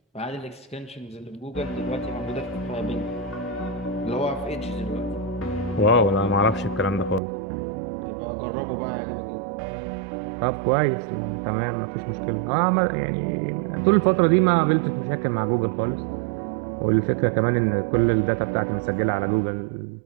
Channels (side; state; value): left; drops out; at 7.2 s